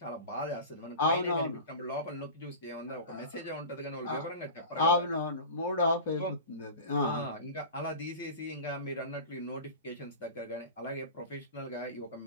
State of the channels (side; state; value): both; inverted; correlation -0.32